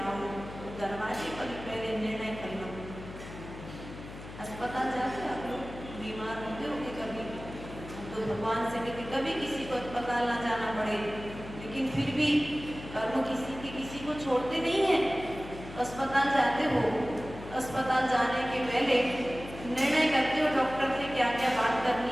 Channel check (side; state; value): left; noise; hum, 13 dB below the sound